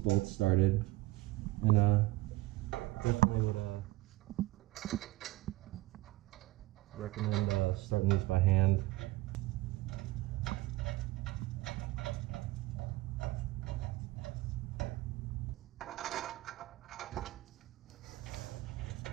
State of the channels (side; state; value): left; quieter; 19.0 dB